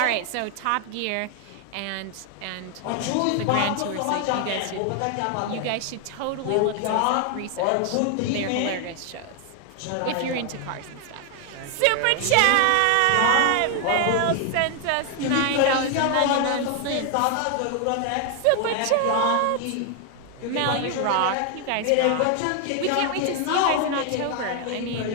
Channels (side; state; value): both; different; correlation 0.00